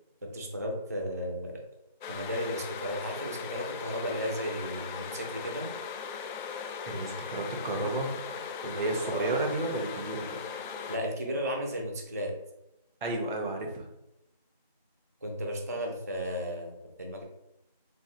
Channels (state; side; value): inverted; both; correlation -0.36